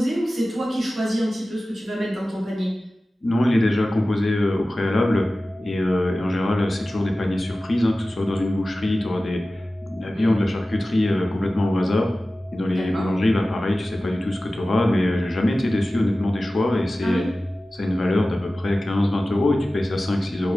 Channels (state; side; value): normal; both; correlation 0.96